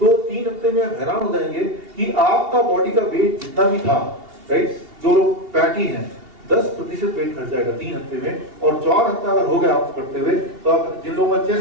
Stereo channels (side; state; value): left; late; 2.8 ms